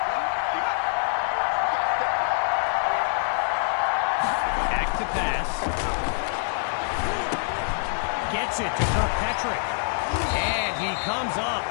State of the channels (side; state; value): right; silent; 61 dB below the other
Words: Back to pass. Gets it to Kirkpatrick. And he comes up